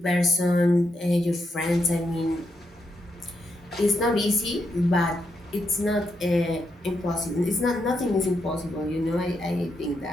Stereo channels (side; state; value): both; normal; correlation 0.82